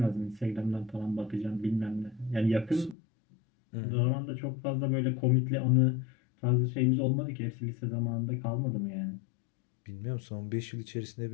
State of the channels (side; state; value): right; drops out; at 3.0 s